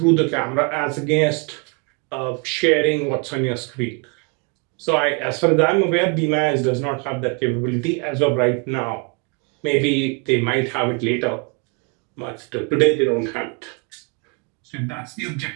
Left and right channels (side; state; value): left; quieter; 33.1 dB